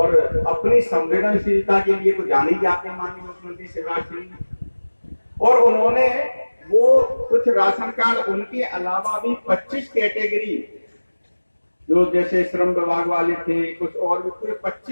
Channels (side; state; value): both; inverted; correlation -1.00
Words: अपनी संवेदनशीलता के लिए तो जान ही जाते माननीय मुख्यमंत्री शिवराज सिंह, और उन्होंने वो कुछ राशन कार्ड उनके अलावा भी 25 कैटेगरी जो जैसे श्रम विभाग वाले थे, कुछ और भी पूरे